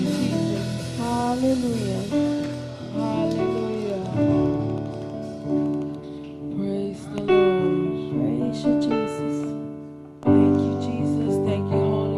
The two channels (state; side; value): identical; both; correlation 1.00